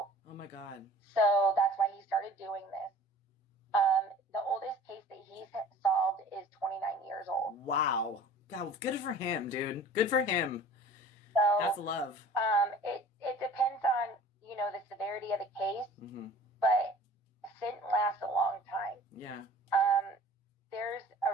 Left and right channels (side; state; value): both; normal; correlation 0.45